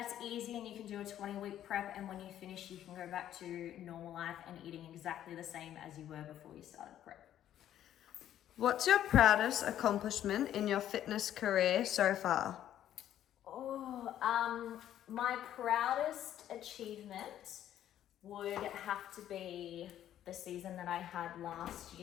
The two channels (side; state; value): right; quieter; 11.4 dB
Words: it's easy and you can do a 20-week prep and when you finish you can go back to normal life and eating exactly the same as you were before you started prep. What's your proudest accomplishment in your fitness career so far? My proudest achievement would have to be the season that I had last